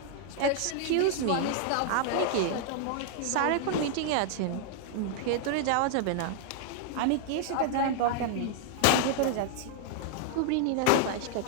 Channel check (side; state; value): both; different; correlation 0.00